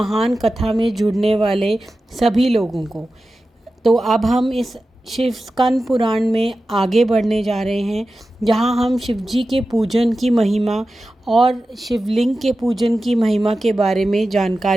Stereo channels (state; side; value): normal; both; correlation 0.94